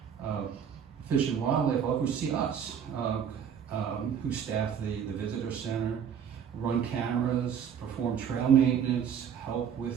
Fish and Wildlife oversee us, who staff the visitor center, run cameras, perform trail maintenance, help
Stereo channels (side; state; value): left; quieter; 8.0 dB